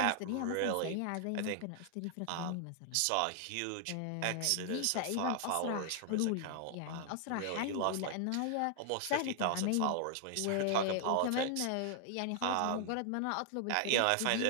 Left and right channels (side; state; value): both; different; correlation 0.00